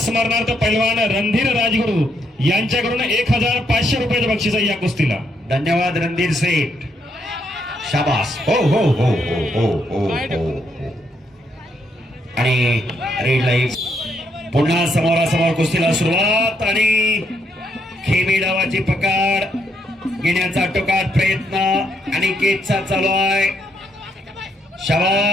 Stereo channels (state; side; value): normal; both; correlation 0.76